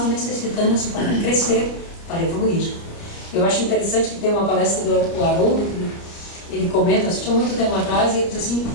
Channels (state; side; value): late; right; 29 ms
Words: necessitamos para crescer, para evoluir. Eu acho interessante que tem uma palestra do Haroldo, que ele comenta, assistiu muito tempo atrás, e ele diz assim: